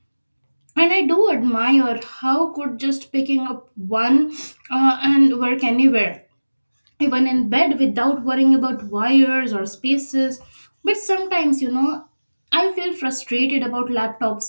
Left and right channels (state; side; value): inverted; both; correlation -1.00